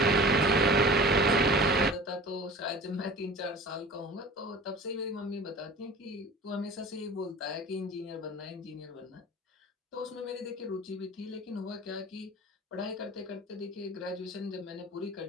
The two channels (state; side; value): normal; both; correlation 0.40